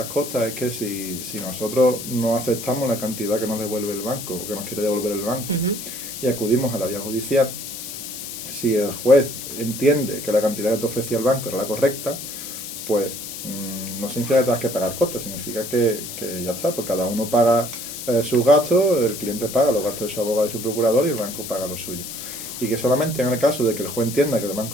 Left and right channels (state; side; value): noise; left; hiss, 9 dB below the sound